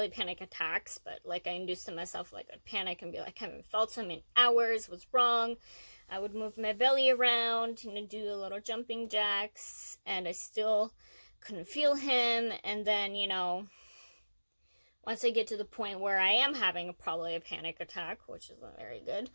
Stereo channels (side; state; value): both; inverted; correlation -1.00